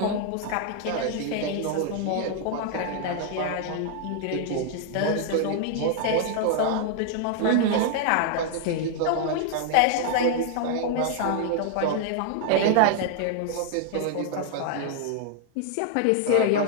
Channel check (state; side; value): different; both; correlation 0.00